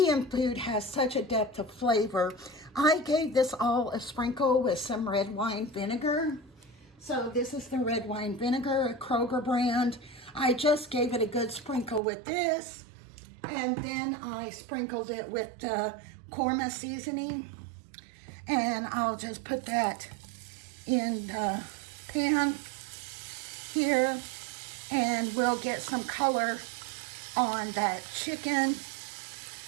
food has such a depth of flavor. I gave this all a sprinkle with some red wine vinegar. So this is the red wine vinegar, a Kroger brand. I just gave it a good sprinkle with this, and then I sprinkled it with the korma seasoning, and I'll just put that in the pan here, and we'll get some color on that chicken.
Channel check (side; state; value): left; drops out; at 12.0 s